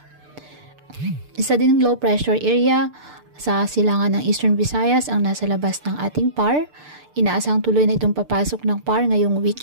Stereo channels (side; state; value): left; late; 6.7 ms